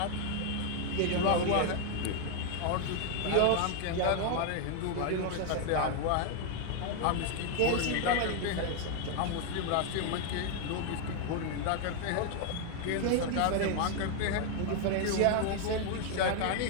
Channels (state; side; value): different; both; correlation 0.00